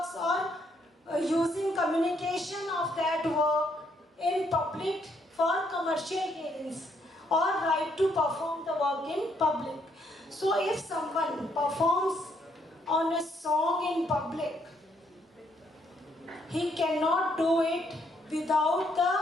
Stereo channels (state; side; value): normal; both; correlation 0.72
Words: or using communication of that work in public for commercial gains, or right to perform the work in public. So if someone performs on a song in public, he cannot do it without